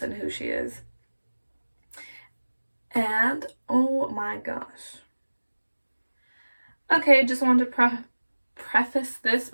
and who she is. And oh my gosh. Okay, just wanted to preface this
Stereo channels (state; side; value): inverted; both; correlation -1.00